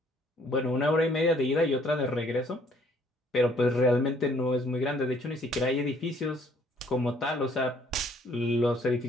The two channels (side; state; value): both; normal; correlation 0.63